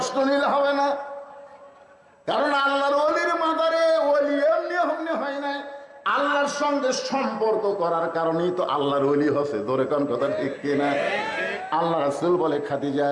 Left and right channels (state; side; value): identical; both; correlation 1.00